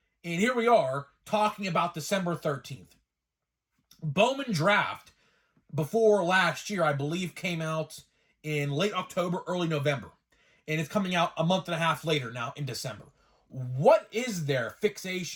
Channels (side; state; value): both; identical; correlation 1.00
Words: And here we are talking about December 13th. Bowman Draft, before last year, I believe, came out in late October, early November. And it's coming out a month and a half later now in December. What is their